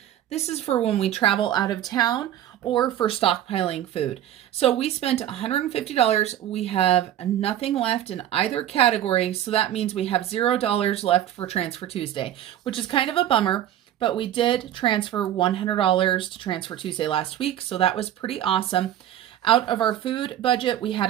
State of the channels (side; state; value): left; quieter; 11.7 dB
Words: this is for when we travel out of town or for stockpiling food. So we spent $150. We have nothing left in either category. So that means we have $0 left for Transfer Tuesday, which is kind of a bummer, but we did transfer $100 to Transfer Tuesday last week. So that was pretty awesome. Out of our food budget, we had